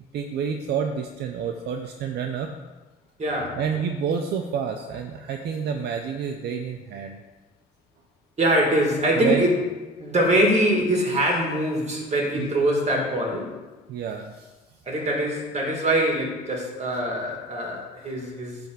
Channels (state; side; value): normal; both; correlation 0.38